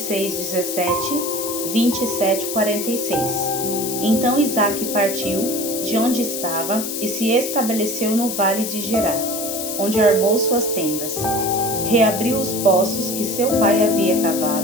17, 27, 46. Então Isaque partiu de onde estava e se estabeleceu no vale de Gerar, onde armou suas tendas. Reabriu os poços que seu pai havia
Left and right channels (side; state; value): left; noise; hiss, 5 dB below the sound